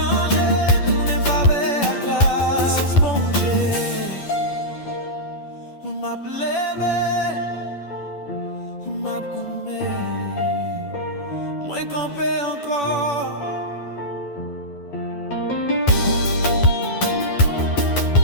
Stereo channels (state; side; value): late; right; 10 ms